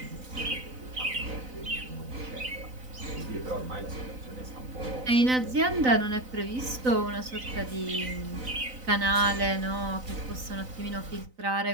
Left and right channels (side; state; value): left; late; 3.9 ms